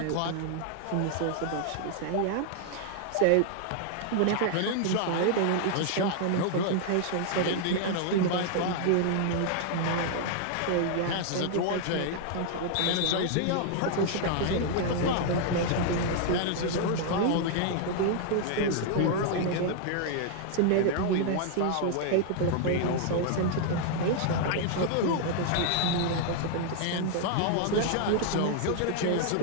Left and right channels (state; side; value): different; both; correlation 0.00